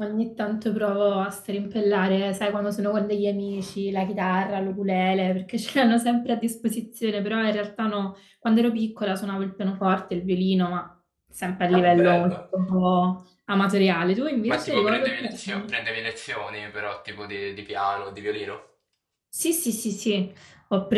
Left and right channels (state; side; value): identical; both; correlation 1.00